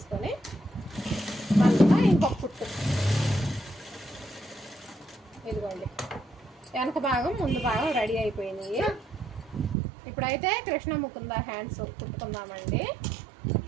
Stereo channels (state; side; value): drops out; left; at 9.8 s